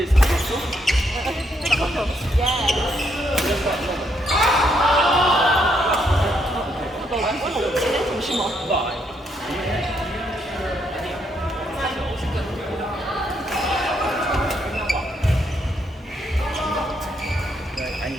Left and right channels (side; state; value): both; normal; correlation 0.75